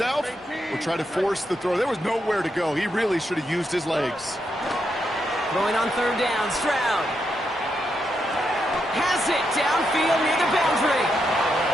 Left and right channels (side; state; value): both; normal; correlation 0.82